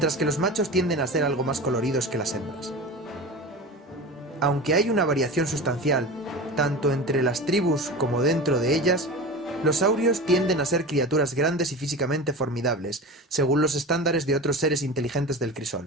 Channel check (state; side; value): normal; both; correlation 0.30